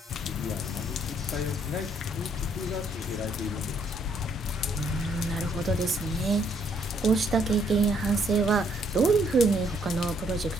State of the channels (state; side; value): normal; both; correlation 0.68